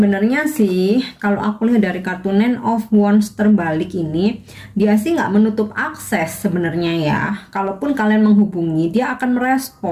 sih kalau aku lihat dari kartu Nine of Wands terbalik ini, dia sih nggak menutup akses sebenarnya ya. Kalaupun kalian menghubungi, dia akan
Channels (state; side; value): identical; both; correlation 1.00